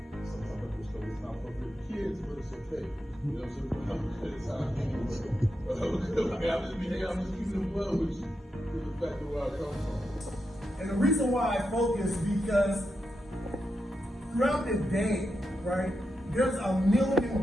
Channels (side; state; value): both; normal; correlation 0.86